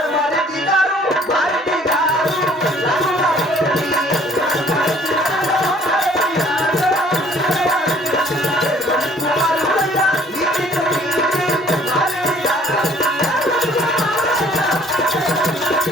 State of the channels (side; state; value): both; normal; correlation 0.57